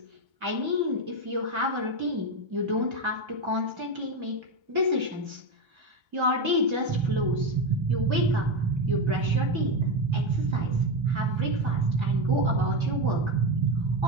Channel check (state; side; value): late; left; 1.3 ms